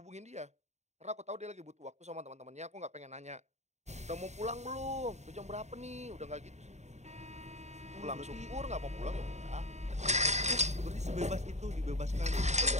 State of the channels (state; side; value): late; left; 0.33 ms